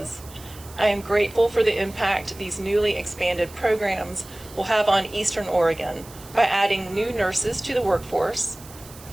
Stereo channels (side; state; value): right; noise; hiss, 19 dB below the sound